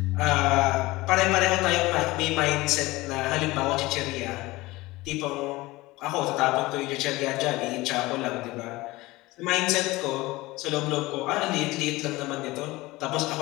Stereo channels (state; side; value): quieter; right; 20.2 dB